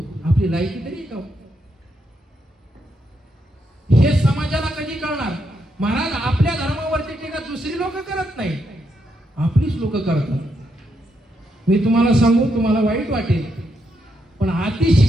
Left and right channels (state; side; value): normal; both; correlation 0.80